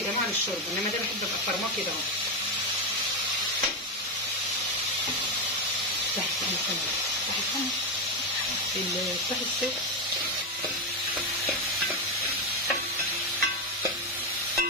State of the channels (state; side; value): normal; both; correlation 0.09